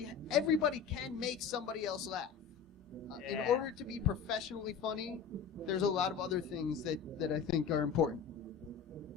can make somebody else laugh. In order to be professionally funny, there's a lot of other things that I think are important.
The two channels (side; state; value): right; quieter; 6.7 dB